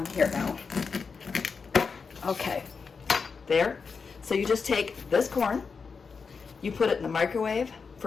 here now. Okay, there. So you just take this corn, you put it in the microwave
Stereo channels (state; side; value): quieter; right; 5.2 dB